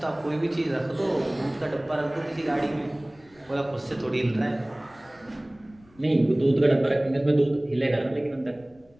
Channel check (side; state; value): left; noise; rumble, 29 dB below the sound